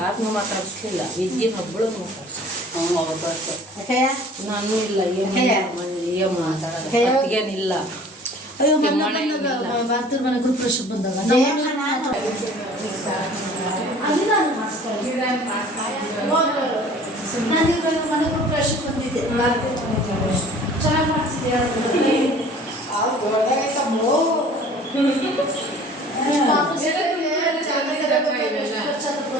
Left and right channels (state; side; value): normal; both; correlation 0.48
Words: ಮಾತಾಡಿಸ್ಲಿಲ್ಲ. ವಿದ್ಯೆ ಹಬ್ಬಳು ನಾನು ಇಲ್ಲ ಏನು ಮಾತಾಡೋದೇನಿಲ್ಲ. ಅಯ್ಯೋ ಮಾತೃ ಮನೆ ಗ್ರೂಪ್ ಪ್ರಶ್ನೆ ಬಂದಾಗ ನಾನು ಮನೆ ಗ್ರೂಪ್ ಪ್ರಶ್ನೆ ಬಂದಿದ್ದೆ. ಚೆನ್ನಾಗಿ ಮಾಡಿಸಿದ್ದೆ.